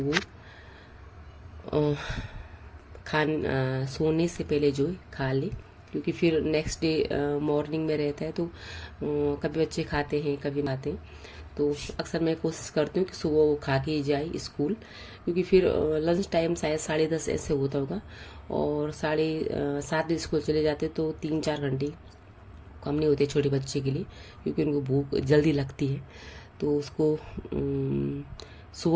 सोने से पहले जो है खा ले, क्योंकि फिर नेक्स्ट डे मॉर्निंग में रहता है तो कभी बच्चे खाते हैं कभी खाते हैं। तो अक्सर मैं कोशिश करती हूँ कि सुबह वो खा के ही जाए स्कूल, क्योंकि फिर लंच टाइम शायद 10:30 ऐसे होता होगा, और 7:30 बजे स्कूल चले जाते तो 3-4 घंटे कम नहीं होते छोटे बच्चे के लिए, क्योंकि उनको भूख जल्दी लगती है। तो उसको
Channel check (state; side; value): identical; both; correlation 1.00